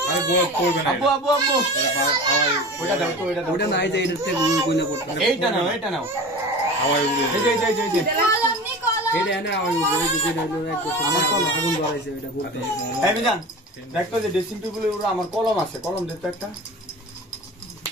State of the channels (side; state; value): both; normal; correlation 0.34